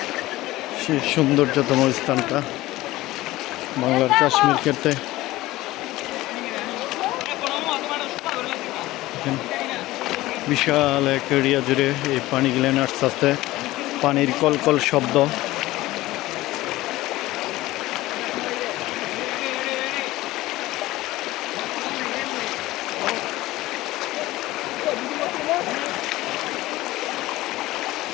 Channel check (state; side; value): quieter; right; 17.6 dB